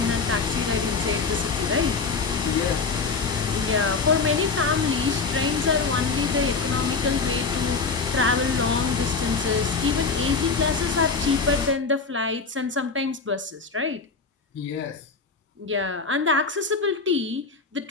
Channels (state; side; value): quieter; right; 4.6 dB